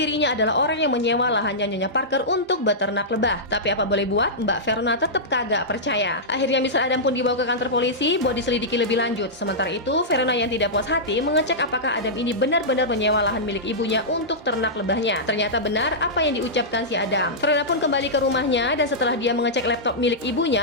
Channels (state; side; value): normal; both; correlation -0.12